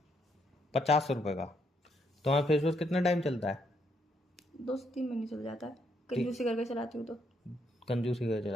50 रुपए का। तुम्हारा फेस वॉश कितना टाइम चलता है? 2 से 3 महीने चल जाता है, कंजूसी करके चलाती हूँ तो। कंजूसी का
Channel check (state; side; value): normal; both; correlation 0.75